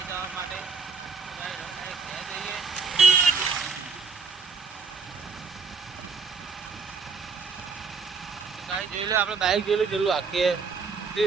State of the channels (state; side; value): quieter; left; 5.2 dB